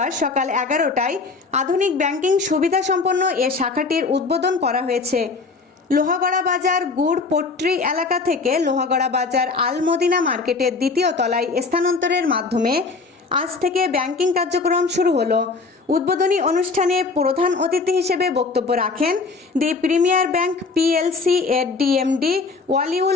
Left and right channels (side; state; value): right; quieter; 4.2 dB